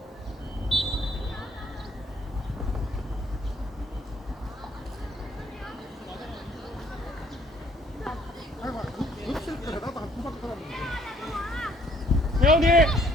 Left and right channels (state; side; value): normal; both; correlation 0.62